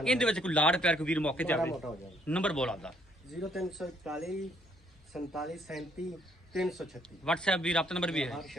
ਇਹਦੇ ਵਿੱਚ ਕੋਈ ਲਾੜ ਪਿਆਰ ਕੋਈ ਵੀਰ ਮੌਕੇ ਤੇ ਮਾੜਾ ਆਵੇ ਮੋਟਾ ਹੋ ਜਾਵੇ। ਨੰਬਰ ਬੋਲ ਆਪਦਾ 0341 47 37 336 WhatsApp ਵੀ ਰਾਬਤਾ ਨੰਬਰ ਵੀ ਹੈ। ਹਰ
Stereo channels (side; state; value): both; normal; correlation 0.67